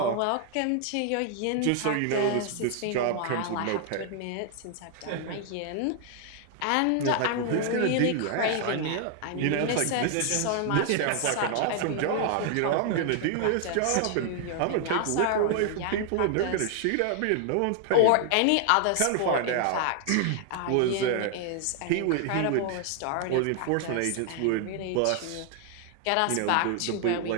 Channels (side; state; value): both; different; correlation 0.00